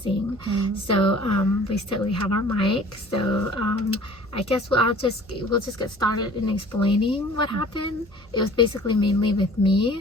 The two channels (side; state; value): both; normal; correlation 0.48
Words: So we have our mic, so I guess we'll just get started in explaining what happened. It was basically mainly with